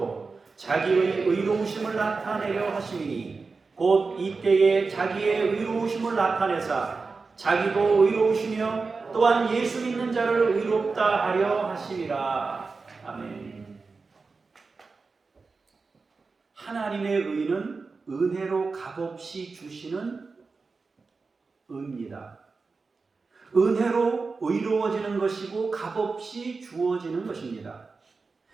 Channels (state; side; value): quieter; left; 4.3 dB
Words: 자기의 의로우심을 나타내려 하심이니 곧 이때에 자기의 의로우심을 나타내사 자기도 의로우시며 또한 예수 믿는 자를 의롭다 하려 하심이라. 아멘. 하나님의 의는 은혜로 값없이 주시는 의입니다. 은혜로 의로워지는 것이고 값없이 주어지는 것입니다.